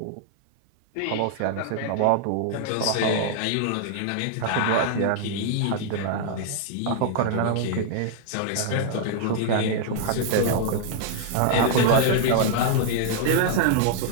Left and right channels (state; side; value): different; both; correlation -0.01